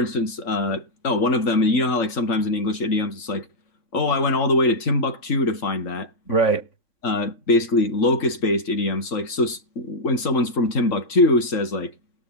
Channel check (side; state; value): right; late; 3.9 ms